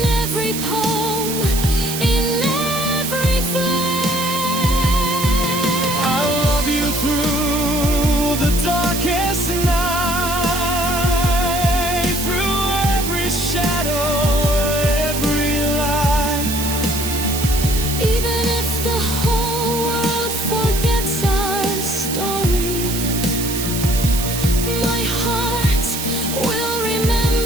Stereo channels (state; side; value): noise; right; hiss, 5 dB below the sound